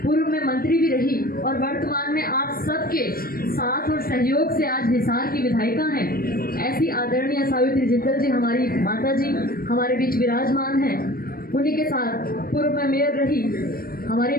पूर्व में मंत्री भी रही और वर्तमान में आप सबके साथ और सहयोग से आज हिसार की विधायिका हैं। ऐसी आदरणीय सावित्री जिंदल जी हमारी माता जी हमारे बीच विराजमान हैं। उन्हीं के साथ पूर्व में मेयर रही हमारी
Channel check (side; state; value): right; late; 0.43 ms